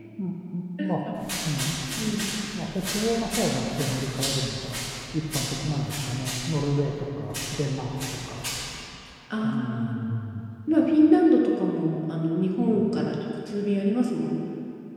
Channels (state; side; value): identical; both; correlation 1.00